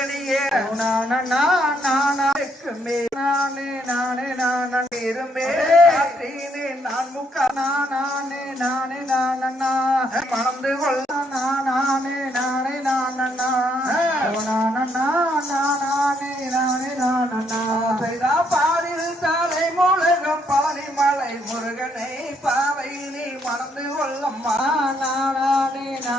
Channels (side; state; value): both; normal; correlation 0.72